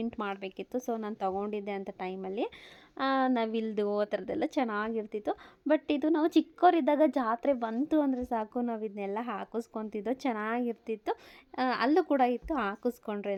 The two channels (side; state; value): both; identical; correlation 1.00